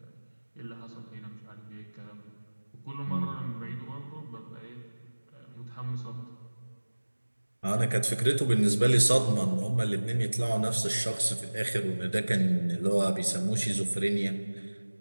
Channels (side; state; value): both; inverted; correlation -1.00